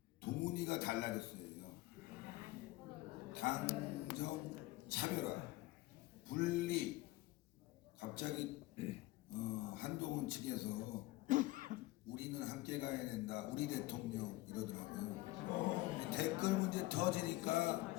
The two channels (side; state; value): right; quieter; 19.1 dB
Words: 동훈이가 달라졌어요. 당정 차별화, 분리. 갑자기 한동훈 측에서 우리는 함께 가야 된다, 우리 대통령 이러더라고요. 댓글 문제 터지니까